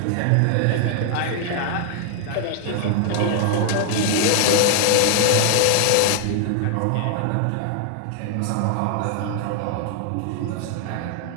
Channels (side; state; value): both; different; correlation 0.00